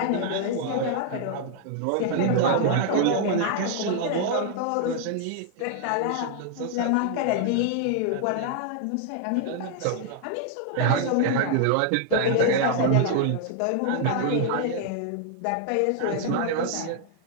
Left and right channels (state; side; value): different; both; correlation 0.00